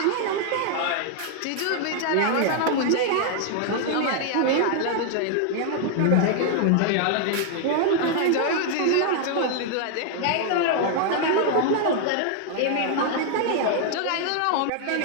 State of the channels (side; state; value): both; different; correlation 0.00